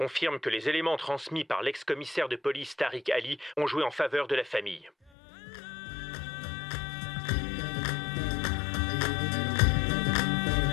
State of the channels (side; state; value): right; drops out; at 5.1 s